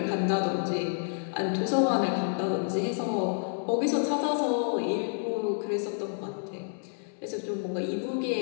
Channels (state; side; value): silent; right; 58 dB below the other